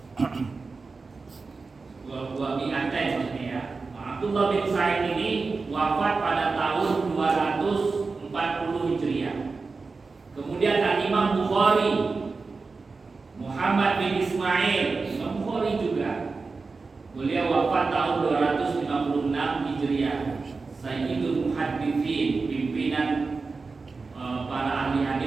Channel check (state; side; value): quieter; left; 4.2 dB